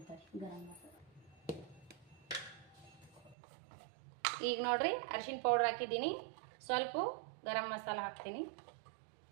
ಗರಂ ಮಸಾಲ. ಈಗ ನೋಡ್ರಿ, ಅರಿಶಿಣ ಪೌಡ್ರ್ ಹಾಕಿದ್ದೀನಿ, ಸ್ವಲ್ಪ ಗರಂ ಮಸಾಲ ಹಾಕ್ತೀನಿ,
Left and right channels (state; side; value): drops out; left; at 3.4 s